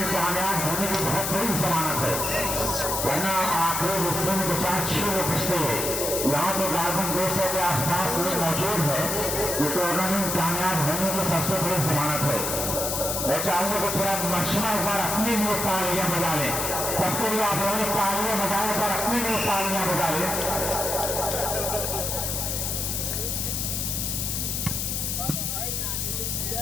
कामयाब होने की बहुत बड़ी जमानत है, वरना आखिरी हिस्से में 2-4-6 लोग बचते हैं। यहाँ तो गार्बन 200 के आसपास लोग मौजूद है। ये टूर्नामेंट कामयाब होने की सबसे बड़ी जमानत है। मैं चाहूंगा कि पूरा मशमा एक बार अपने लिए तालियां बजा लें। सबके लिए आप लोगों ने तालियां बजाने पर अपने लिए तालियां बजा लें।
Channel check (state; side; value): noise; left; hiss, 1 dB below the sound